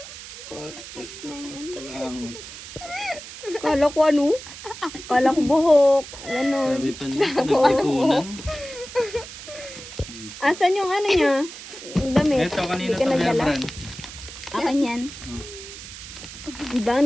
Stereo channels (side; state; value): right; noise; hiss, 13 dB below the sound